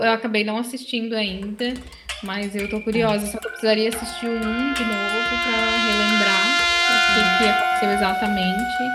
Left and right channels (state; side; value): identical; both; correlation 1.00